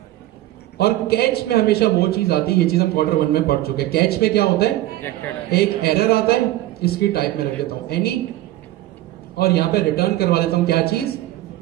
और कैच में हमेशा वो चीज आती है, ये चीज हम Q1 में पढ़ चुके हैं। कैच में क्या होता है, एक एरर आता है, इसकी टाइप में रख देता हूं एनी, और यहां पे रिटर्न करवा देता हूं क्या चीज,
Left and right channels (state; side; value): quieter; left; 15.5 dB